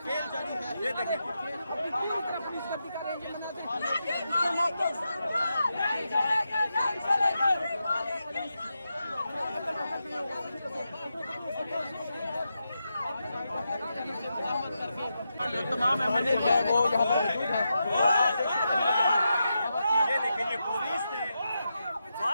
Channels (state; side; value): inverted; both; correlation -0.87